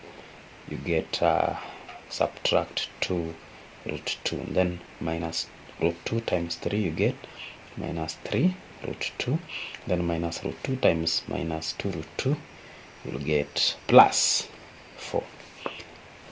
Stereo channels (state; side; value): identical; both; correlation 1.00